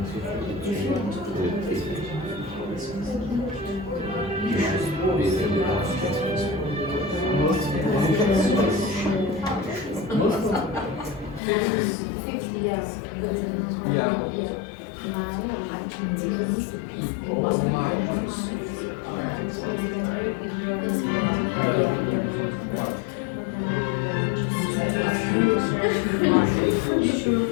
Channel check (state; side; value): drops out; right; at 11.4 s